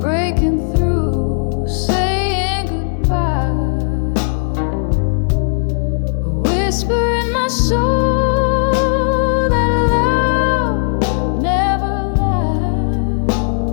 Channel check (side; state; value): right; silent; digital silence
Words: breaking through, saying goodbye. A whisper in my soul that love never